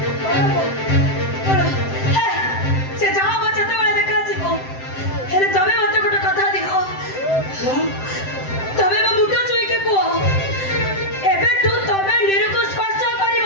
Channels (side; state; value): right; late; 7.7 ms